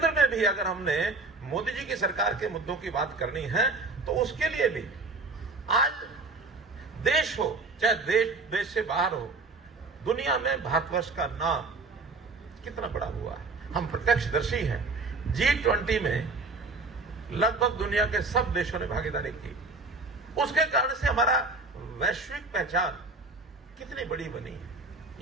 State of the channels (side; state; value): left; quieter; 3.5 dB